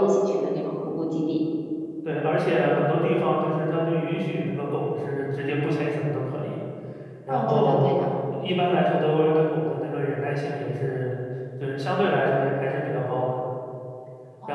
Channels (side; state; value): both; identical; correlation 1.00